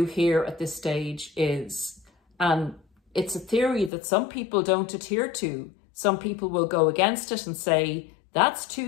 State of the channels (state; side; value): drops out; right; at 3.9 s